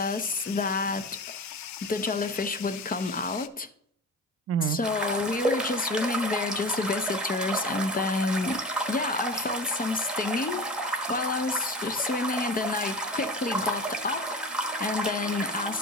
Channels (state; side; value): normal; both; correlation 0.33